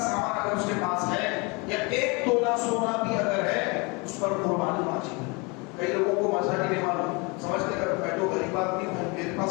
اگر اس کے پاس ہے یا 1 تولہ سونا بھی اگر ہے اس پر قربانی واجب ہے. کئی لوگوں کو مزہ نہیں معلوم سمجھتے کہ میں تو غریب آدمی ہوں میرے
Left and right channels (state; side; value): quieter; right; 28.8 dB